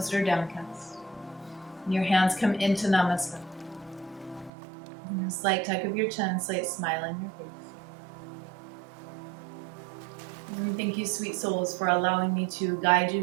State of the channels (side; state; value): left; drops out; at 4.5 s